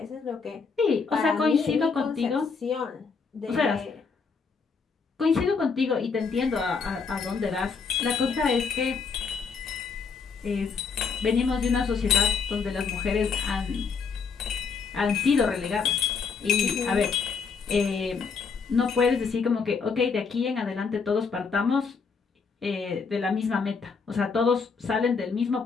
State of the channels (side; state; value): right; quieter; 5.3 dB